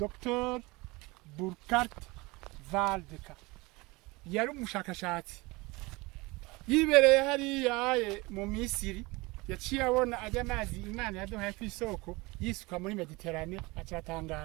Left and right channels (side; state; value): left; quieter; 23.7 dB